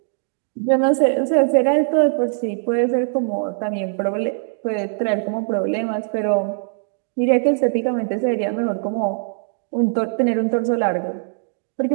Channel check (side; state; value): left; silent; digital silence